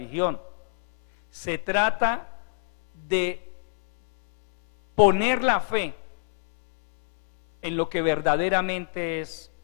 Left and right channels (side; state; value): right; silent; 59 dB below the other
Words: se trata de poner la fe en lo que verdaderamente es